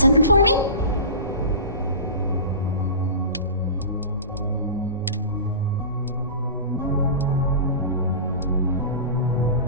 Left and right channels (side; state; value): both; inverted; correlation -0.33